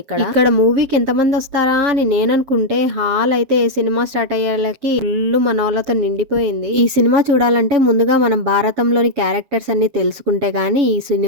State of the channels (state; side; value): late; left; 7.5 ms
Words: ఇక్కడ. ఇక్కడ మూవీకి ఎంతమంది వస్తారా అని నేననుకుంటే హాల్ అయితే సినిమా స్టార్ట్ అయ్యేలకి ఫుల్ మనోళ్ళతో నిండిపోయింది. ఈ సినిమా చూడాలంటే ముందుగా మనం భారతంలోని క్యారెక్టర్స్ అన్ని తెలుసుకుంటే గానీ ఈ